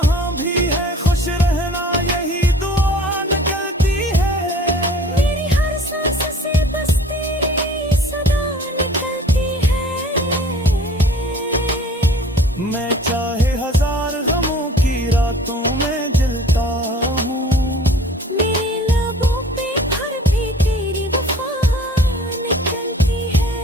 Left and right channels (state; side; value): normal; both; correlation 0.48